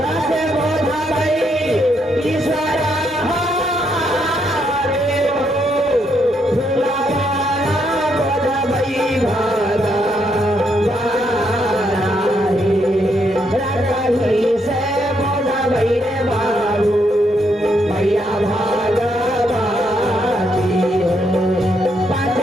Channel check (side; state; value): both; normal; correlation 0.76